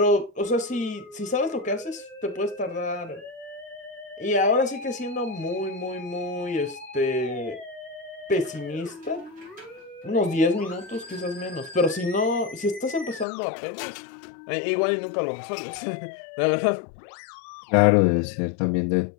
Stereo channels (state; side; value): drops out; right; at 13.2 s